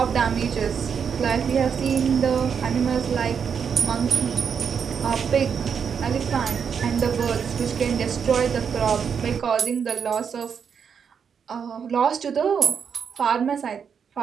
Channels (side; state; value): left; quieter; 6.9 dB